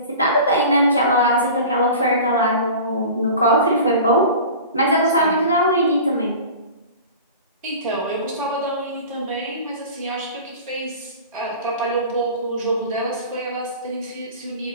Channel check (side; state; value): both; inverted; correlation -0.37